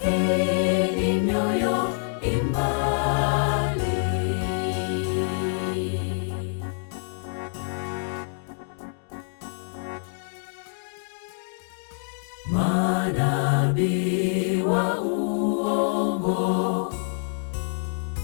mioyo imbali. Manabii wa uongo,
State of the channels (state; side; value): silent; right; digital silence